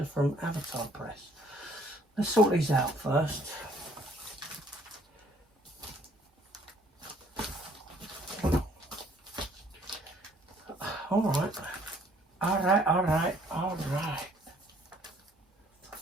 from Avatar Press. Let's sort these out first. All right.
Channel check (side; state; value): both; normal; correlation 0.61